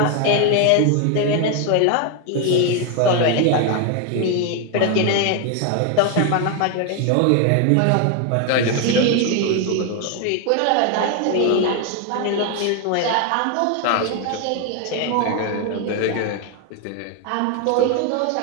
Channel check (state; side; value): different; both; correlation 0.01